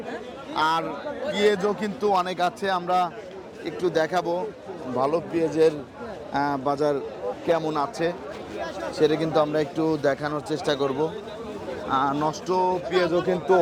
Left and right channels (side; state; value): both; identical; correlation 1.00